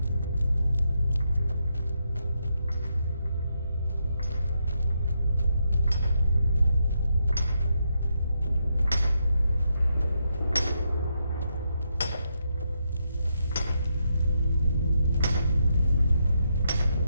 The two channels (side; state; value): both; inverted; correlation -0.81